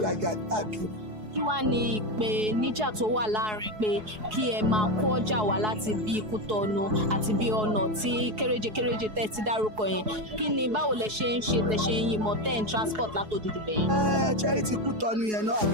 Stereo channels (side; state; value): left; late; 4.7 ms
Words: rajà káàkiri. Kí wá ní ìpèníjà tó wà láàrin pé kí ẹ máa kó ọjà wá láti bí Kútọ̀nù àti bí ọ̀nà tí kéréje tẹ́ ti dárúkọ yẹn kí ni báwo lẹ ṣe ń ṣe tẹ ṣe ń yìnbọn tẹ́ ń transport látòdìdì bẹ̀yẹn? Charity Kútọ̀nù yẹn náà